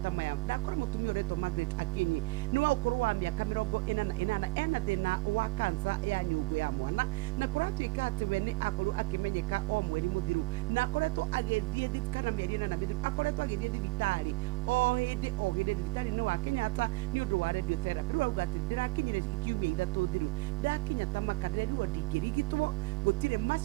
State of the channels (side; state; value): left; quieter; 22.2 dB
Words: maya. Ndakora mũtumia ũretwo Margaret Akinyi nĩ wa ũkũrũ wa mĩaka 48 ena thĩna wa kansa ya nyũngũ ya mwana, na kũratuĩka atĩ we nĩ akorirwo akĩmenyeka o mweri mũthiru na akoretwo agĩthiĩ kana mĩeri 4 mĩthiru akoretwo agĩthiĩ thibitarĩ o hĩndĩ thibitarĩ-inĩ wa Kenyatta nĩ ũndũ wa radiotherapy. Rĩu auga atĩ ndĩrakinyire kiumia 3 thiru ndakinya ta makandĩrwo ndingĩrigitwo gũtirĩ